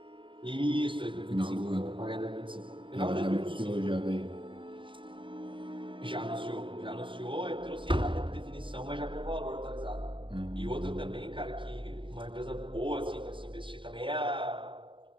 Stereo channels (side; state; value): left; late; 0.24 ms